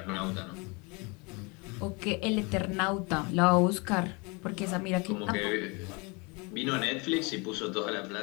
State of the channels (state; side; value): quieter; right; 29.2 dB